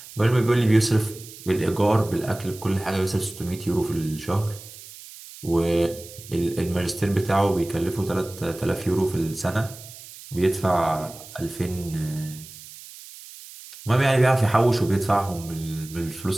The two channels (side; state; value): right; noise; hiss, 17 dB below the sound